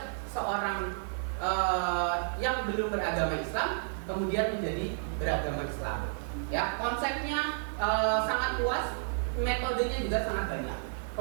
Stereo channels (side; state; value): left; silent; digital silence